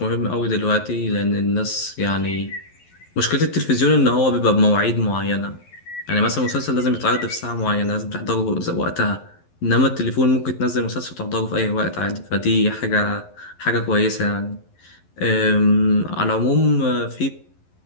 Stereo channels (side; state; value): right; late; 11 ms